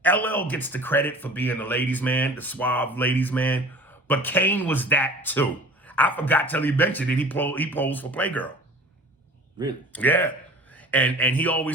LL gets the credit for being the ladies' man, the suave ladies' man, but Kane was that too. I forgot till he mentioned it. He posed for Playgirl. Really? Yeah. And he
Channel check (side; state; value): both; normal; correlation 0.43